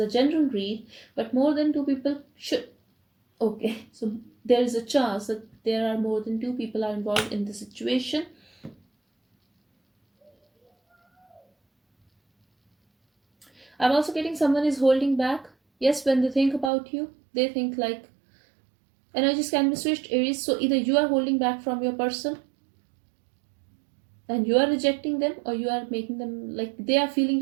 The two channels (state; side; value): drops out; left; at 16.7 s